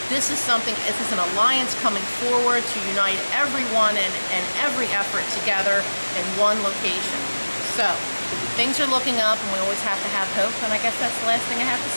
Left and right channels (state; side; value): inverted; both; correlation -1.00